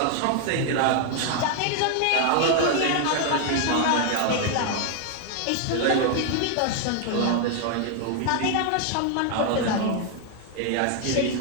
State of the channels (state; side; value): different; both; correlation 0.00